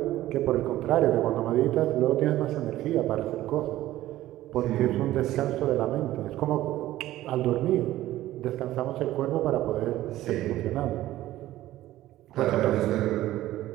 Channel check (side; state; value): left; quieter; 14.9 dB